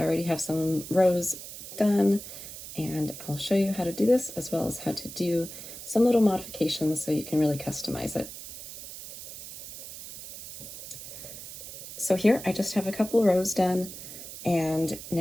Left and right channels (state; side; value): noise; right; hiss, 12 dB below the sound